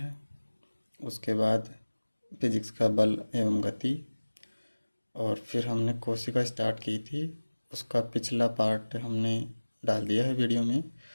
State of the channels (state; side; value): inverted; both; correlation -1.00